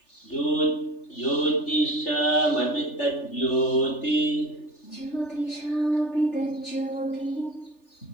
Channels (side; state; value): right; late; 3.4 ms